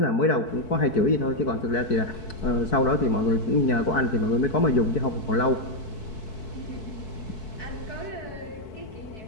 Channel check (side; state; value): right; late; 4.6 ms